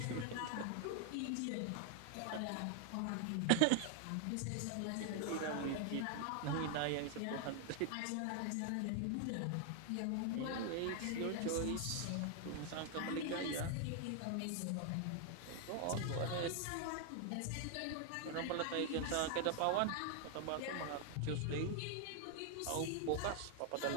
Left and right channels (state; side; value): different; both; correlation 0.00